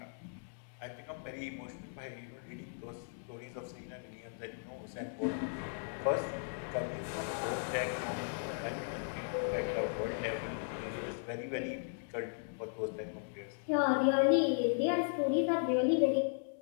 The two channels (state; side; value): silent; right; digital silence